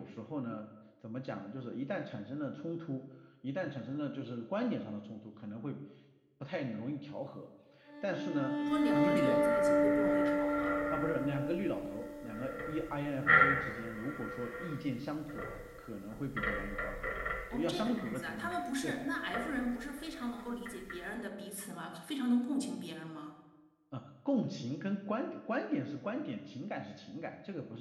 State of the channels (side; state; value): both; identical; correlation 1.00